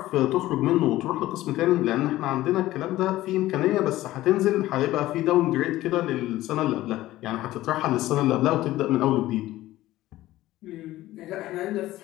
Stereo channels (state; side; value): quieter; right; 15.9 dB